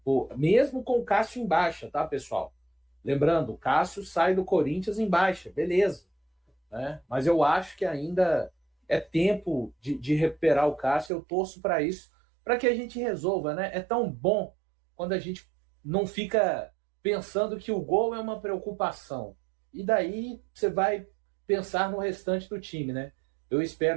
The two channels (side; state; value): left; drops out; at 11.1 s